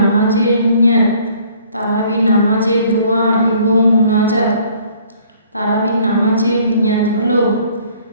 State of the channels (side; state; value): both; inverted; correlation -0.58